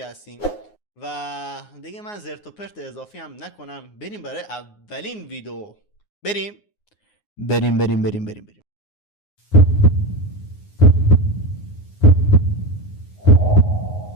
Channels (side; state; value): right; late; 9.6 ms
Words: و دیگه من زرت و پرت اضافی هم نکنم، بریم برای اولین ویدیو. بریم.